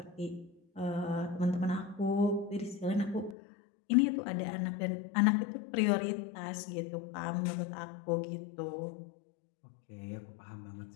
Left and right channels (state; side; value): drops out; right; at 3.4 s